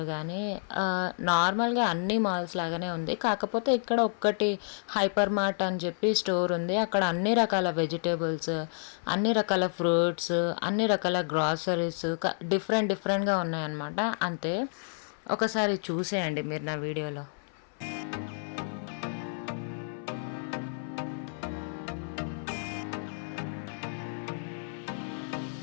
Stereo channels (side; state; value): right; silent; 58 dB below the other